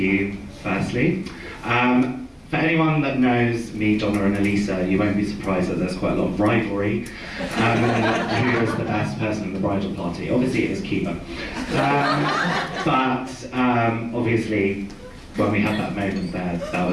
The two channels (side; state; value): both; identical; correlation 1.00